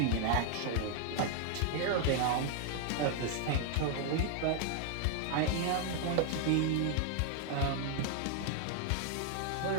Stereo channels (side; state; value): both; different; correlation 0.00